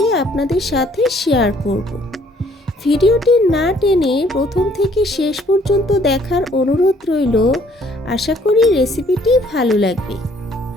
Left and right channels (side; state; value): both; normal; correlation 0.62